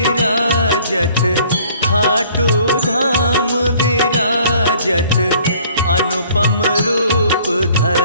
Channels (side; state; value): both; inverted; correlation -0.56